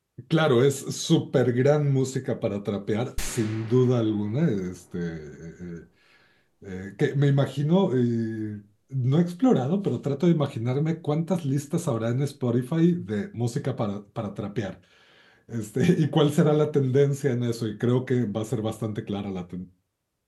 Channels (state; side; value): identical; both; correlation 1.00